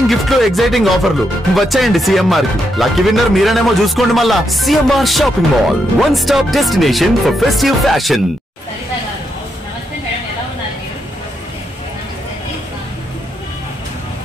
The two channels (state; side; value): normal; both; correlation 0.81